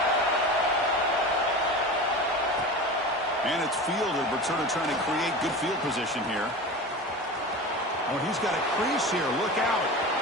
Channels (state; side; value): normal; both; correlation 0.31